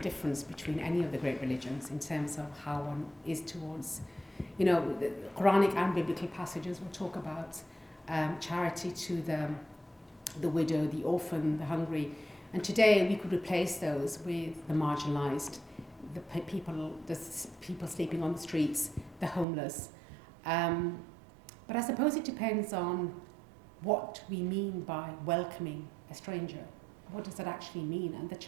between any of the great religions in terms of how one is towards, the Quranic and biblical passages will talk about charity to the widow, the orphan, the hungry. And today we could replace those with the marginalised, the people sleeping on the streets, the homeless. But I suppose it depends on what we mean by welcoming a stranger. What does that actually mean? And the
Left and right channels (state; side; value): drops out; left; at 19.5 s